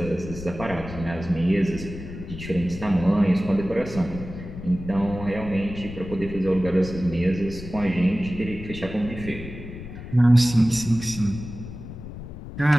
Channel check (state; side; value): noise; left; rumble, 11 dB below the sound